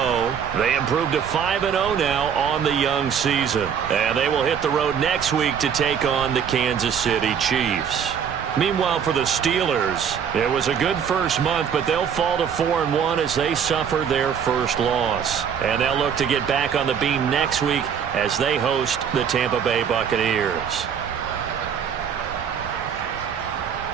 they improved to 5-0 now on the young season. And they will hit the road next week to take on the Kansas City Chiefs. Meanwhile, for the Steelers, it was a good first month, but they'll fall to 4-1 as they suffer their first loss. And they'll look to get back on the beam next week as they host the Tampa Bay Buccaneers.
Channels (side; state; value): left; quieter; 7.7 dB